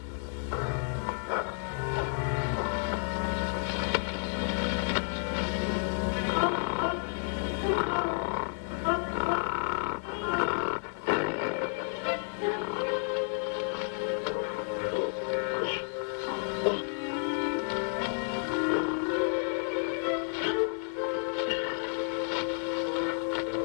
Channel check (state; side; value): silent; right; 57 dB below the other